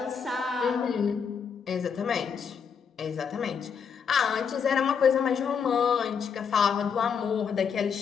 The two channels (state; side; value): quieter; right; 6.7 dB